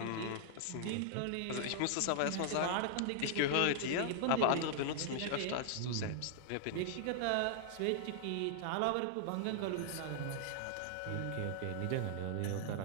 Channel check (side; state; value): both; different; correlation -0.01